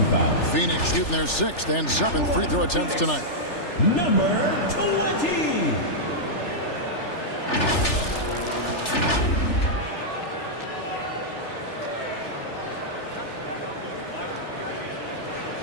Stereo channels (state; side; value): late; right; 3.4 ms